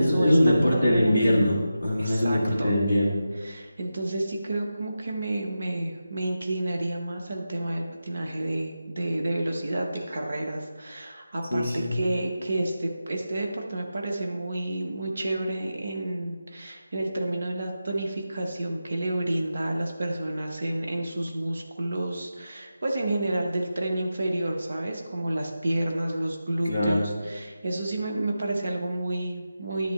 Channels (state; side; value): inverted; both; correlation -0.91